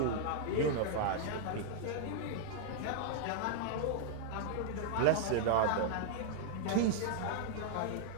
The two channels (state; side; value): different; both; correlation -0.01